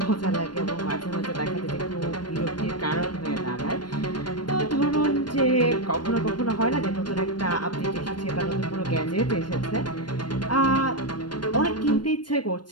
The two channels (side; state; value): right; late; 0.71 ms